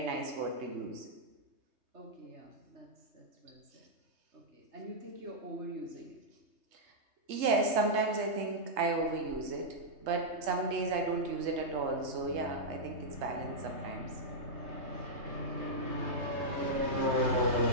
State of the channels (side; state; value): left; late; 3.2 ms